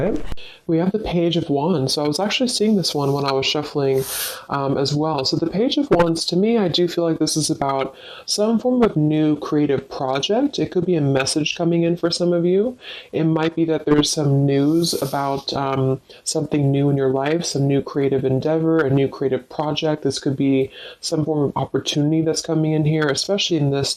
We have the Page of Wands. So I was actually seeing this one when I was shuffling as well. So the Page of Wands, to me, I do feel like this is about some form of new creative project. It could be a message coming in for some of you. It might be that there's some news about something new in your life, some new creative endeavor, a new creative project. This could be some form of opportunity that's coming in here, especially in this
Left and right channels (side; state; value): both; identical; correlation 1.00